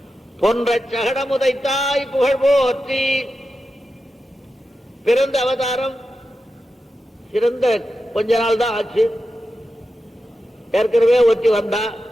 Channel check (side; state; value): both; normal; correlation 0.90